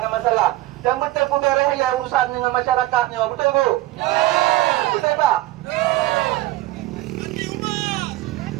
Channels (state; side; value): quieter; left; 17.2 dB